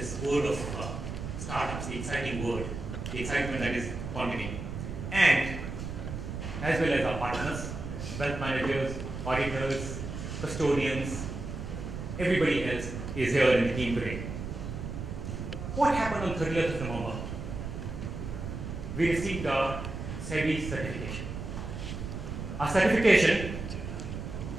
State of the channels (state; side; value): noise; right; rumble, 6 dB below the sound